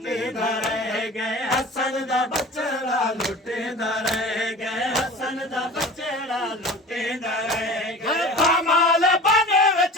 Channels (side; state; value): both; normal; correlation 0.38